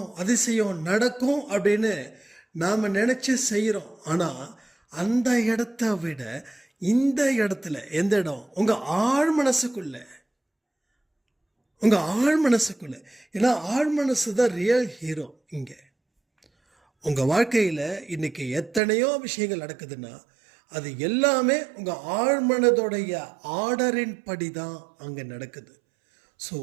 அதிசயம் நடக்கும் அப்படின்னு நாம் நினச்சி செய்கிறோம். ஆனால் அந்த இடத்த விட இந்த இடத்துல எந்த இடம்? உங்கள் ஆழ் மனசுக்குள்ளே, உங்கள் ஆழ் மனசுக்குள்ளே. ஏன்னா ஆழ் மனசு தான் ரியல் ஹீரோ. இங்கே உங்கள் வாழ்க்கையில் இன்றைக்கி எத்தனையோ விஷயங்கள் நடக்குதுன்னா அது எல்லாமே உங்கள் ஆழ்மனதோடைய ஆர்டரின் படி தான் அங்கே நடக்குது. ஸோ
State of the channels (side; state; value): left; drops out; at 18.8 s